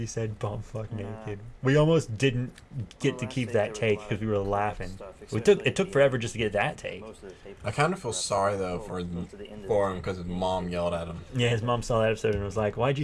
said bumfuck naked. We almost didn't get to keep that take because we were laughing. It took forever just to get that take. I kind of feel sorry though for him because his mom yelled at him. Yeah, his mom saw that episode and was like, "Why'd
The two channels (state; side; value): identical; both; correlation 1.00